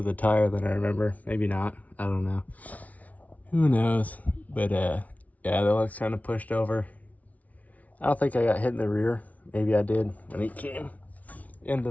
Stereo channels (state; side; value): late; right; 0.070 ms